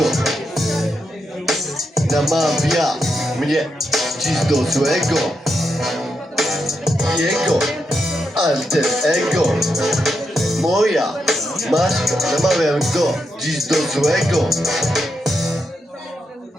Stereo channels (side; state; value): both; normal; correlation 0.83